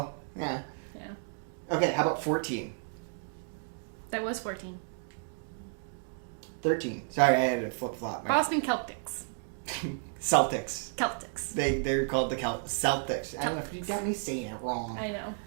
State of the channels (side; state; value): left; silent; 56 dB below the other